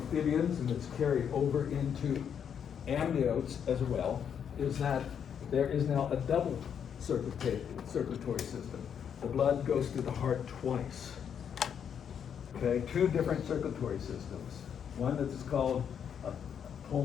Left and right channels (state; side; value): quieter; right; 8.0 dB